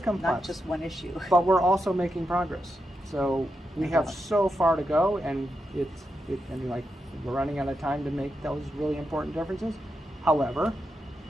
complex. not just one issue. But we're also making progress. So we No have doubt. so far to go, and like we're running out of time to make those really important differences. However,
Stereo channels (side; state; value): both; normal; correlation 0.86